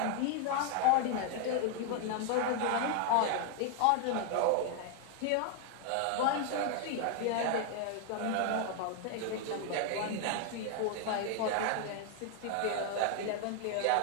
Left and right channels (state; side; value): different; both; correlation 0.00